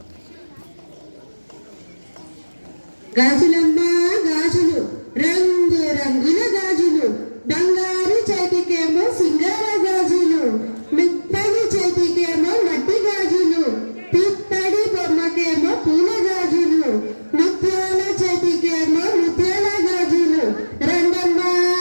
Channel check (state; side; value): inverted; both; correlation -1.00